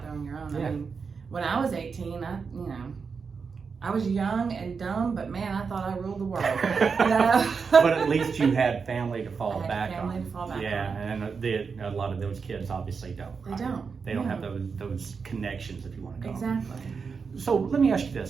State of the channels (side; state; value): left; quieter; 5.4 dB